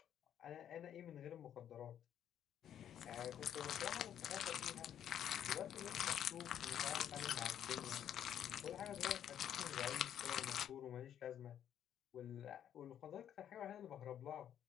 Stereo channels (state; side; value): quieter; right; 10.0 dB